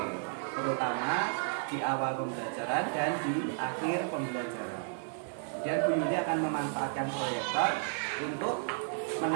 terutama di awal pembelajaran dan di akhir pembelajaran. Kemudian Bu Yuli akan memanfaatkan proyektor untuk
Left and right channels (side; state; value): left; silent; digital silence